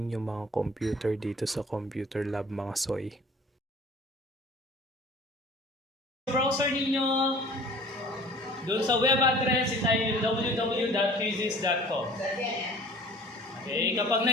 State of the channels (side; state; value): both; normal; correlation 0.47